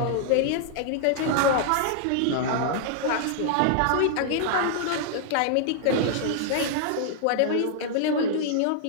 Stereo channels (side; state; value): both; different; correlation -0.01